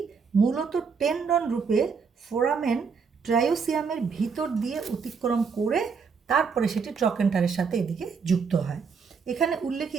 মূলত টেন্ডন রূপে ফোরামেন ট্রায়োসিয়ামের ভিতর দিয়ে অতিক্রম করে তারপরে সেটি ট্রকেন্টারের সাথে এদিকে যুক্ত হয়। এখানে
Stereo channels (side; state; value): left; quieter; 5.6 dB